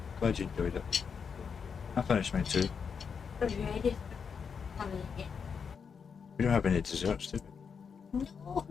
Glad you enjoyed it. I finished mine too. Are you ready for coming in? We don't have any desserts, do we? No.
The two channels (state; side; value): quieter; right; 6.3 dB